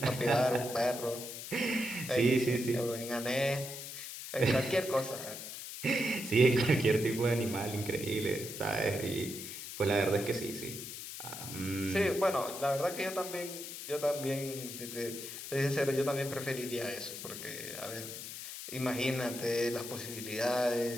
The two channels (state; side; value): noise; left; hiss, 9 dB below the sound